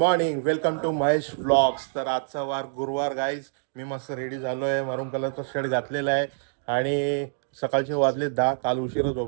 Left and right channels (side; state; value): left; silent; digital silence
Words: welcome to Mahesh vlogs. तर आजचा वार गुरुवार गाईज. मी मस्त रेडी झालोय, मरून कलरचा शर्ट घातलेला आहे आणि सकाळचे वाजले 10. काल उशिरा